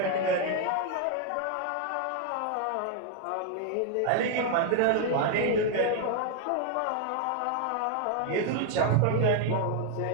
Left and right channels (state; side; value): different; both; correlation 0.00